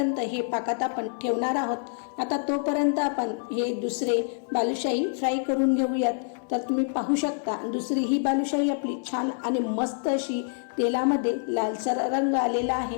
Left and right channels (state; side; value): silent; right; 60 dB below the other